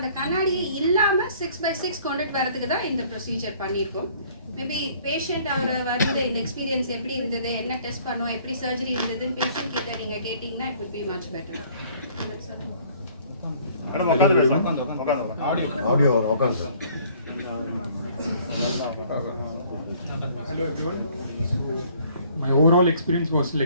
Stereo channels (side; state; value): both; inverted; correlation -0.57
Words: கண்ணாடியை இல்லாம 6/6 கொண்டுட்டு வரதுக்கு தான் இந்த ப்ரொசீஜர் பண்ணியிருக்கோம். மேபி பேஷண்ட் அவர் வரும்போது இந்த எக்ஸ்பீரியன்ஸ் எப்படி இருந்தது, என்ன டெஸ்ட் பண்ணோம், எப்படி சர்ஜரி இருந்ததுன்னு பேஷண்ட் கிட்ட நீங்க கேட்டீங்கன்னா it will be much better. Hello everyone. My overall experience was